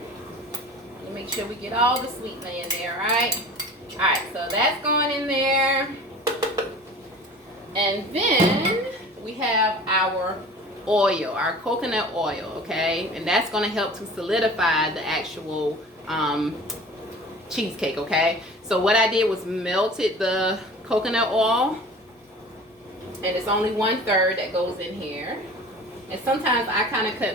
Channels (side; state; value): both; normal; correlation 0.41